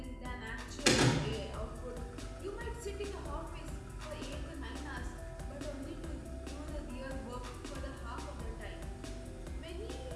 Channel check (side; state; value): both; identical; correlation 1.00